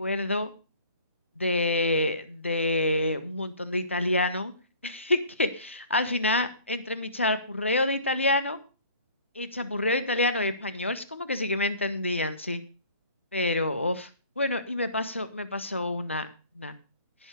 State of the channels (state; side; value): inverted; both; correlation -0.48